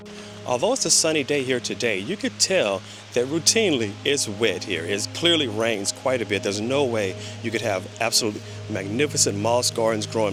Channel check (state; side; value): identical; both; correlation 1.00